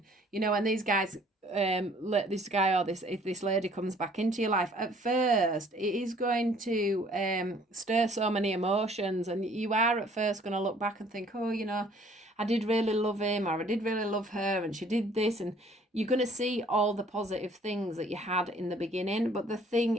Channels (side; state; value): both; normal; correlation 0.58